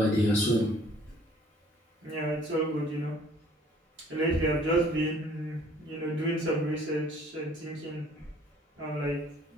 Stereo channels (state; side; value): normal; both; correlation 0.57